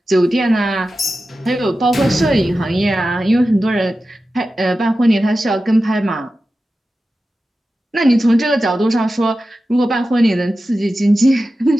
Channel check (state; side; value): normal; both; correlation 0.93